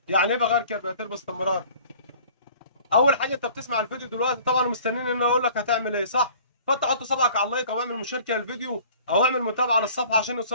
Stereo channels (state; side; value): inverted; both; correlation -0.49